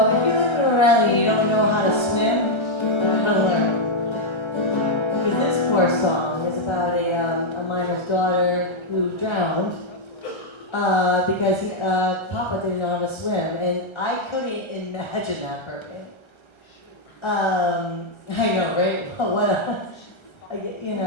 if you live in a rally and you don't know how to swim, you're gonna learn. Because this poor song is about a miner's daughter who drowned because Papa didn't know how to swim, and I couldn't imagine that for me. I know, right? What a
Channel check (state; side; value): late; right; 1.3 ms